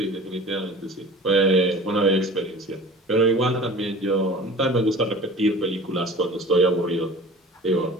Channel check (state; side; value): normal; both; correlation 0.42